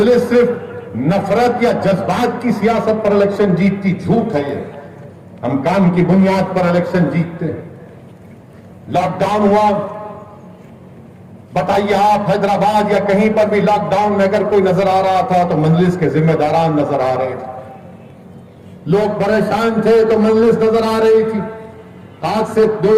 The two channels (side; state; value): both; identical; correlation 1.00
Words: सिर्फ नफरत या जज्बात की सियासत पर इलेक्शन जीतती, झूठ है ये। हम काम की बुनियाद पर इलेक्शन जीतते हैं। लॉकडाउन हुआ, बताइए आप हैदराबाद या कहीं पर भी लॉकडाउन में अगर कोई नजर आ रहा था तो मजलिस के जिम्मेदारान नजर आ रहे थे। लोग परेशान थे तो मजलिस नजर आ रही थी। आज से